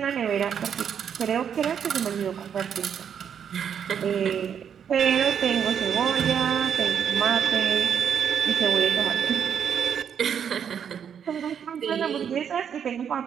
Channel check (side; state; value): left; quieter; 8.1 dB